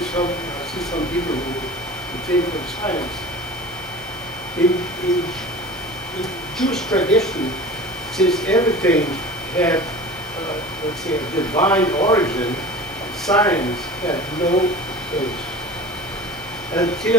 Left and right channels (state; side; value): normal; both; correlation 0.38